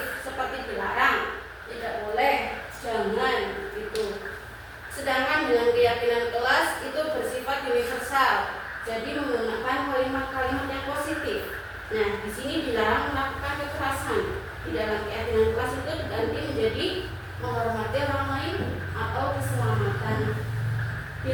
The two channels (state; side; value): identical; both; correlation 1.00